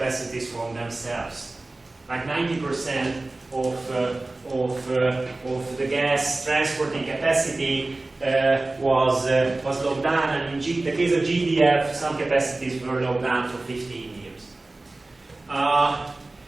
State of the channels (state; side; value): quieter; left; 3.0 dB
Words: from themselves. Like 90% of the gas transporting capacity was locked down, and in the case of GDF, some capacities were locked down for 15 years.